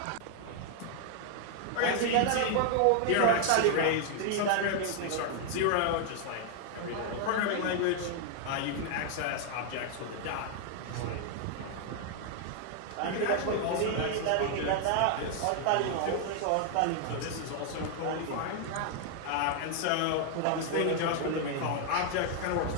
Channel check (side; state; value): both; different; correlation 0.00